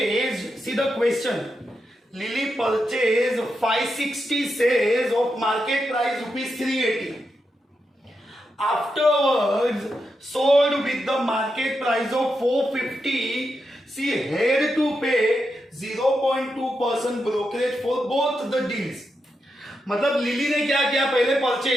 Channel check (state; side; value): normal; both; correlation 0.86